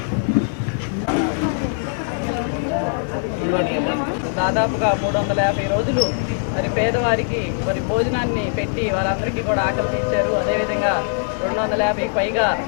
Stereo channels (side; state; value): right; silent; digital silence